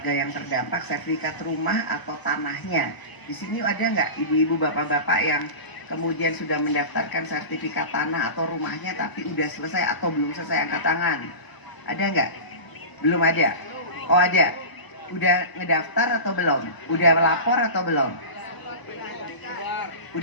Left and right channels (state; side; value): late; right; 1.0 ms